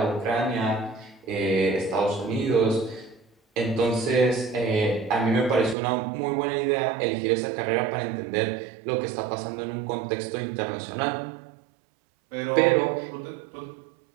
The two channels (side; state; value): left; drops out; at 5.8 s